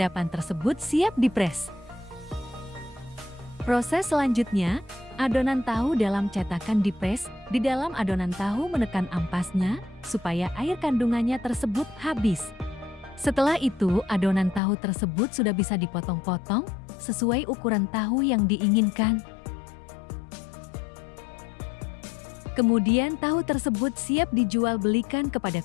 tersebut siap dipres. Proses selanjutnya, adonan tahu dalam cetakan dipres. Di dalam adonan tahu menekan ampasnya supaya air kandungannya tersebut habis. Setelah itu, adonan tahu tersebut sudah bisa dipotong-potong sesuai ukuran tahu yang diinginkan. Kemudian tahu tersebut siap dijual belikan kepada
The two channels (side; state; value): right; drops out; at 14.6 s